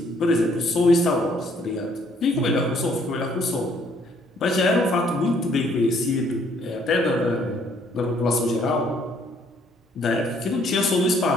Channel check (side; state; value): both; normal; correlation 0.65